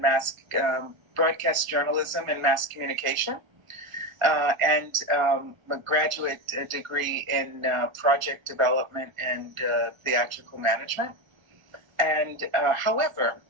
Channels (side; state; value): left; late; 1.4 ms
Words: mass broadcast journalism and mass communication, and a graduate degree in project development and theatrical management. And however,